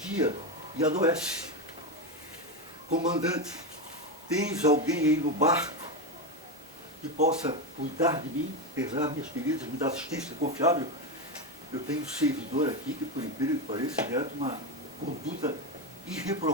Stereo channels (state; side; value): normal; both; correlation 0.12